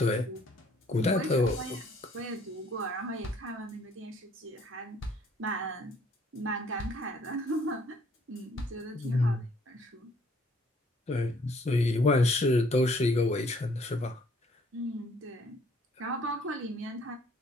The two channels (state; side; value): normal; both; correlation 0.61